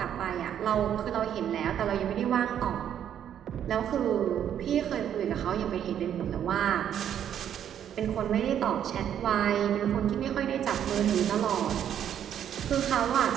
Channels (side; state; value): left; quieter; 9.7 dB